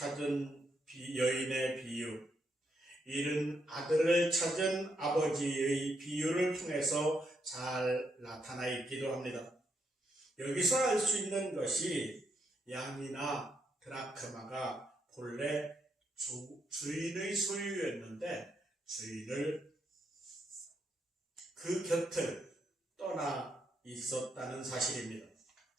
여인의 비유, 잃은 아들을 찾은 아버지의 비유를 통해서 잘 나타나 있기도 합니다. 여기서 알 수 있는 것이 양이나 드라크마가 본래 주인의 소유였는데 주인을 그 곁을 떠나 있었다는 사실입니다.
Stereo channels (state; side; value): normal; both; correlation 0.78